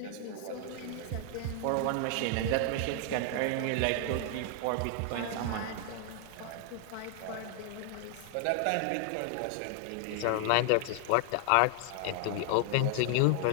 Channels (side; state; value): both; different; correlation 0.00